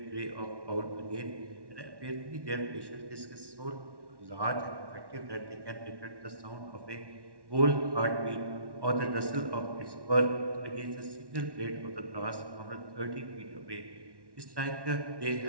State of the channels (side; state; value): left; late; 1.1 ms